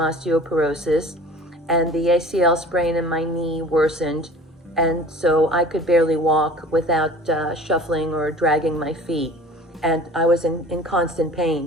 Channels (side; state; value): both; normal; correlation 0.44